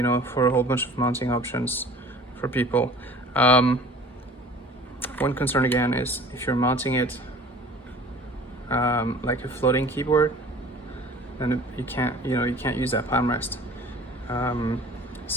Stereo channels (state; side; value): normal; both; correlation 0.46